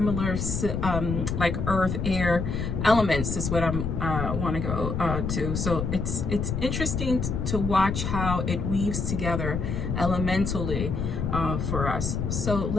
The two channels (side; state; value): left; noise; rumble, 2 dB below the sound